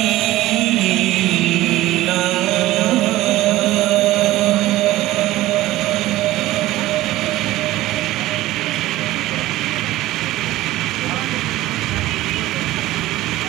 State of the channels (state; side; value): quieter; left; 16.4 dB